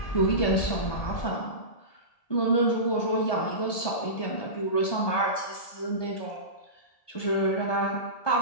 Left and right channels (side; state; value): right; late; 1.8 ms